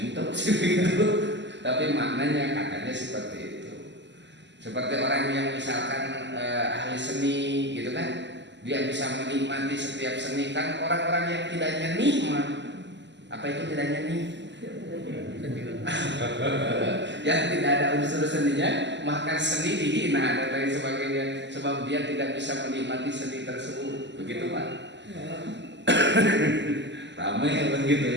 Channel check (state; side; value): late; left; 0.52 ms